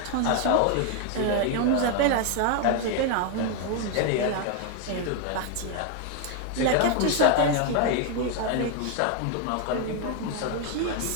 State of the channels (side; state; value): both; different; correlation 0.01